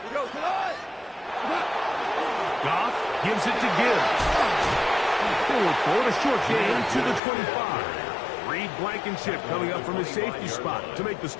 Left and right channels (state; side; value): drops out; right; at 7.2 s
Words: Goff gives it to Gibbs. They look for a short gain to the 25. Reed Blankenship coming up from his safety spot to make the